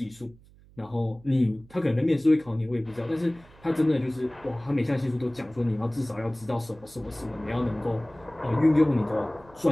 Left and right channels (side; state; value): right; noise; hum, 25 dB below the sound